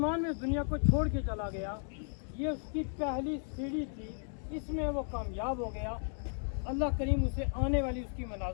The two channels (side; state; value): right; silent; 55 dB below the other